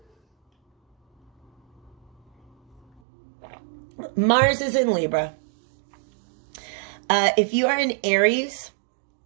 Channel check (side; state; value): left; drops out; at 3.0 s